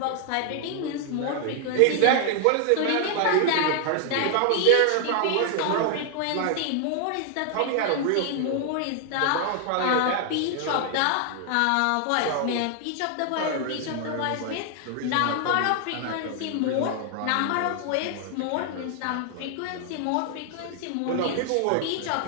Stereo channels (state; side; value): different; both; correlation 0.00